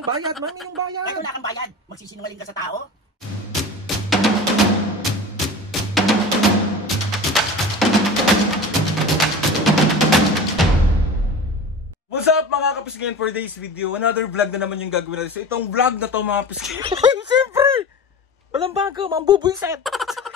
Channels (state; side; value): normal; both; correlation 0.34